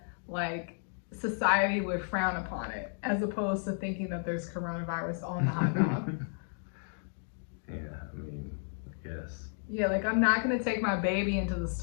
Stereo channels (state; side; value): silent; right; digital silence